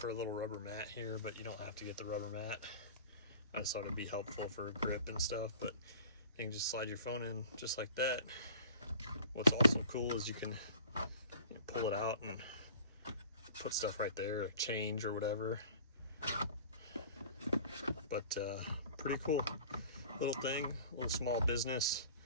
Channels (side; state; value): both; inverted; correlation -0.44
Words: a little rubber mat here, but you don't have to get the rubber mat. I just thought it'd be helpful for grip and stuff, but you can just slide your phone in just like that. What's also cool is you can pull it out and put stuff right there, or change or whatever. But pretty cool little thing, a little small business.